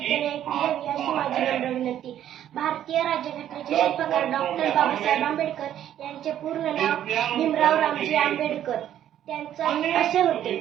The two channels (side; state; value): left; quieter; 11.1 dB